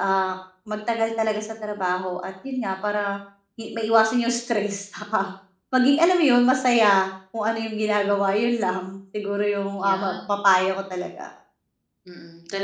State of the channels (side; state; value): both; identical; correlation 1.00